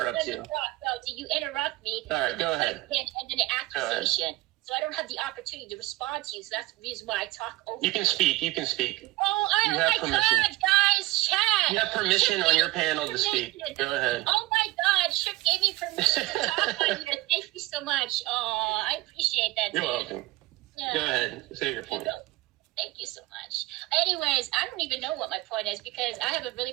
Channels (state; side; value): quieter; left; 19.3 dB